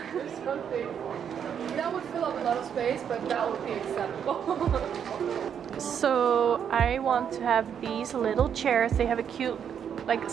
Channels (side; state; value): left; quieter; 8.2 dB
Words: There's something that would fill up a lot of space, but that would be acceptable. So I want to have these little chairs. They have a cute like